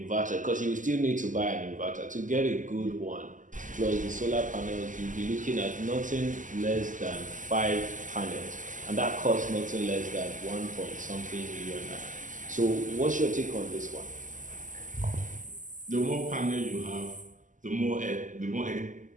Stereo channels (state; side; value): late; left; 0.37 ms